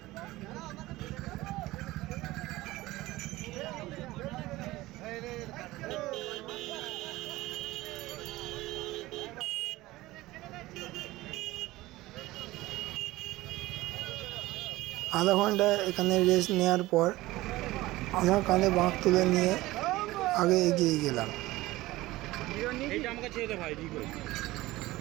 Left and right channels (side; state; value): left; quieter; 18.3 dB